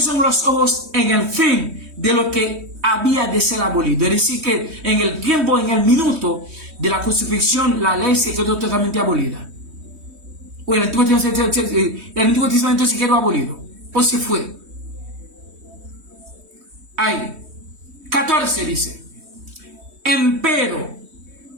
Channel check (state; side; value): late; left; 3.1 ms